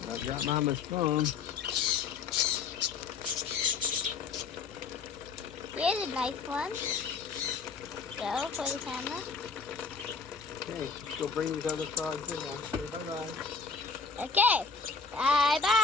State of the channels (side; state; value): right; quieter; 5.1 dB